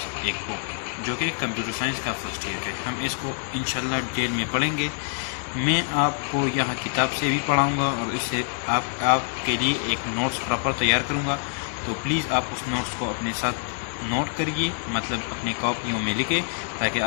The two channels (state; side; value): silent; right; digital silence